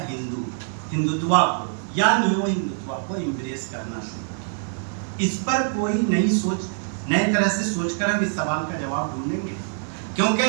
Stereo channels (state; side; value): silent; left; digital silence